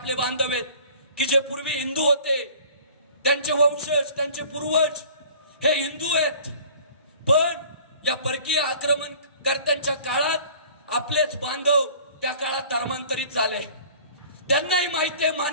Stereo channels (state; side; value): inverted; both; correlation -0.48